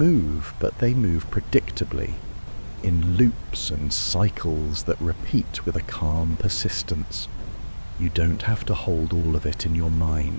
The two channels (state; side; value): inverted; both; correlation -1.00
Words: but they move predictably, in loops and cycles that repeat with a calm persistence. You don't have to hold all of it in your